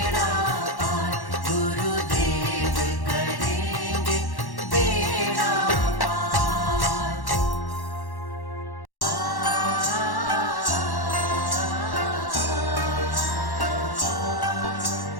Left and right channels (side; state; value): right; late; 1.1 ms